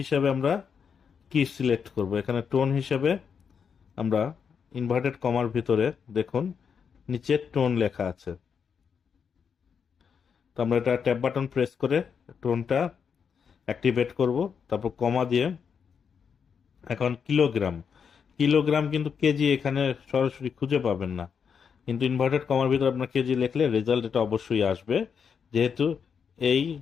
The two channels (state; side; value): quieter; right; 6.7 dB